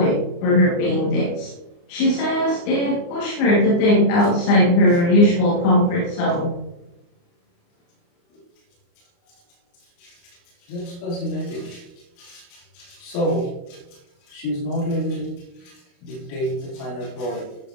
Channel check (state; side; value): late; right; 29 ms